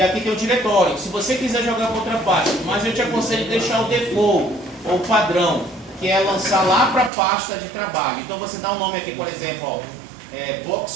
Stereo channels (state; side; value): drops out; left; at 7.1 s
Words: aqui tem o diretório. Se você quiser jogar para outra pasta, mas eu te aconselho deixar o default ou padrão, que é lançar lá para a pasta de trabalho. Então você dá um nome aqui, por exemplo, ó,